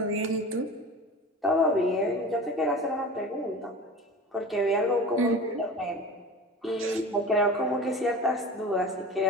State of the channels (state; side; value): normal; both; correlation 0.35